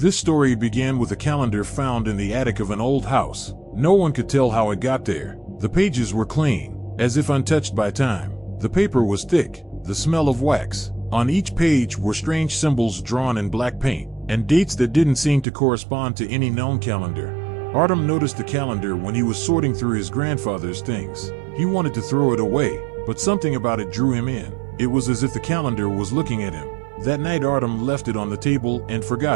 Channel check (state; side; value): drops out; left; at 15.5 s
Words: story began with a calendar found in the attic of an old house. No one could tell how it got there. The pages were clean, as if untouched by time. The paper was thick, the smell of wax. On each page were strange symbols drawn in black paint, and dates that didn't seem to correspond to any known calendar. Artem noticed the calendar when he was sorting through his grandfather's things. He wanted to throw it away, but something about it drew him in. It was as if the calendar was looking at him. That night Artem left it on the table and